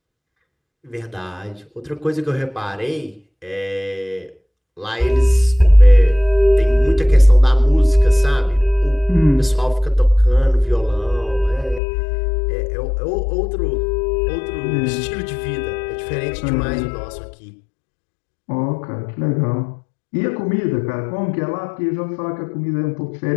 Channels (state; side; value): drops out; right; at 11.8 s